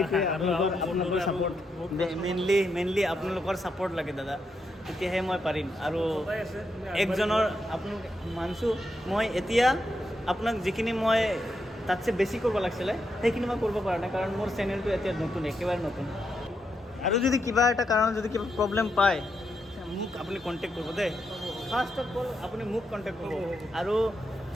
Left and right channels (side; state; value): both; normal; correlation 0.82